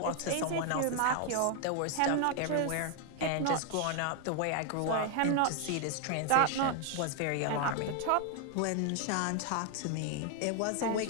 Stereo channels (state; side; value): different; both; correlation 0.00